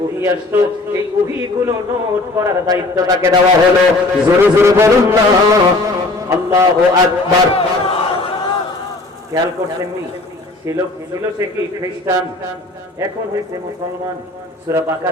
ওহী আসতো, এই ওহীগুলো নোট করার দায়িত্ব তাকে দেওয়া হলো। জোরে জোরে বলুন না আল্লাহু আকবার। খেয়াল করছেন নি, ছিল সে কি খ্রিস্টান, এখন হয়েছে মুসলমান। সূরা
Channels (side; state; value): right; quieter; 3.0 dB